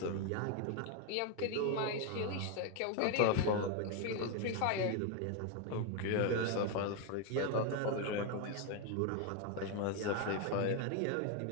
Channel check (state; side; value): different; both; correlation 0.01